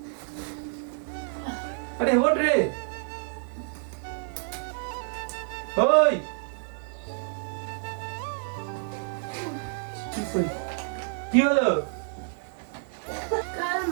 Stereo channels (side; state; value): left; silent; digital silence